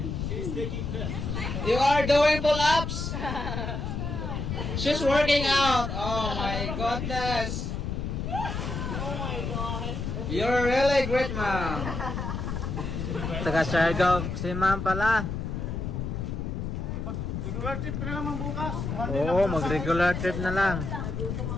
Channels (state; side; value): noise; left; rumble, 3 dB below the sound